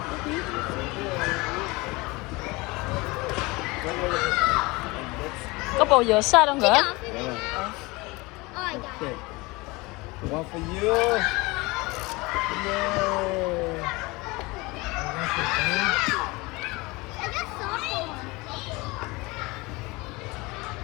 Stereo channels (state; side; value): quieter; right; 23.8 dB